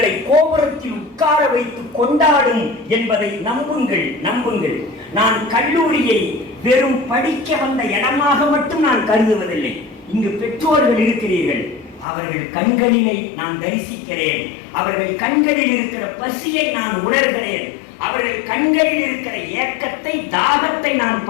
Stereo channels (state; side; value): drops out; right; at 12.1 s